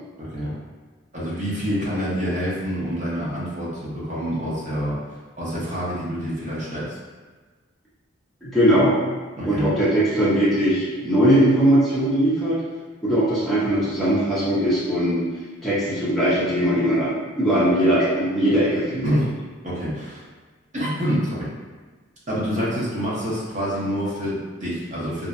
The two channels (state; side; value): normal; both; correlation 0.52